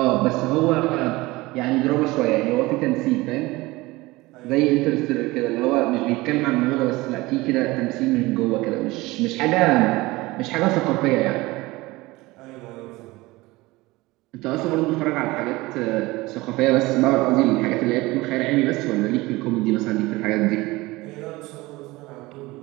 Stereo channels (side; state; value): left; quieter; 20.8 dB